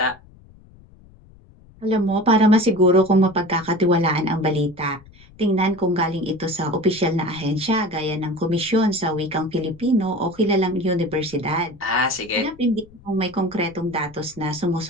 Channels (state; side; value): noise; left; rumble, 25 dB below the sound